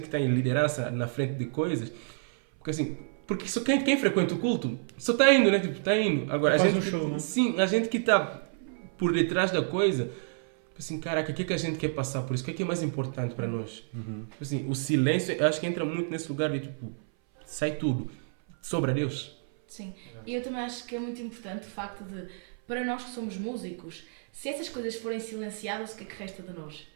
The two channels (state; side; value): silent; left; 57 dB below the other